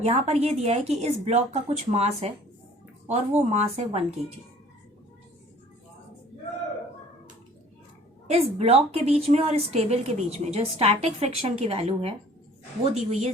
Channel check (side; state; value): both; normal; correlation 0.52